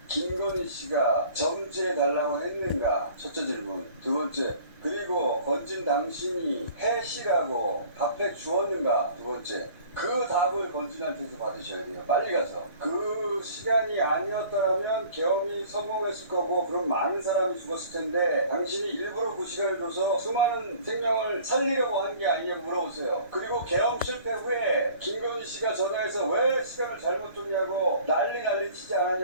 김건희 씨가 정지해달라고 했는가? 첫째 질문. 두 번째, 그리고 건진 당신이 해시라고 답해 주었는가? 두 번째. 그 답을 건진한테서 받으셔야 돼요. 빨리 가서. 그 시간이 아니었더라면 계엄이 성공했을 거고 그럼 많은 사람이 죽었을 텐데 당신이 일부러 그 시간을 줘서 수많은 생명을 살리려고 한 게 아니냐고 물어보세요. 그리고 계엄 실패 후에 김건희 씨가 전화해서 왜 시간을 잘못 줬냐고 난리 치지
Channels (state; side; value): inverted; both; correlation -0.49